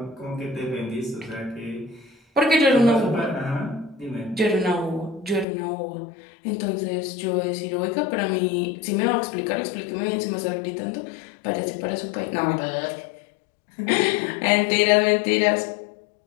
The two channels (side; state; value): right; drops out; at 5.5 s